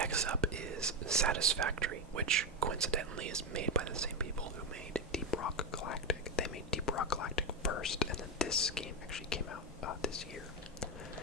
up is Satisfactory, which coincidentally is made by the same people who made Deep Rock Galactic. They made Deep Rock Galactic first, and then this game actually came out this year.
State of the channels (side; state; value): both; normal; correlation 0.10